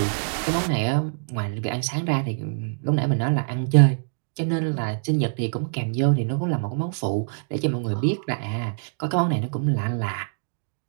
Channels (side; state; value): left; silent; digital silence